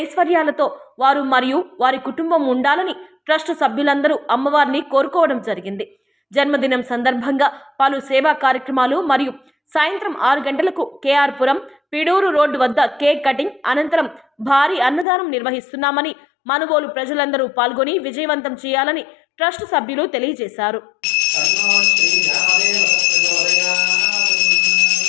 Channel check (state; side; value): drops out; right; at 15.1 s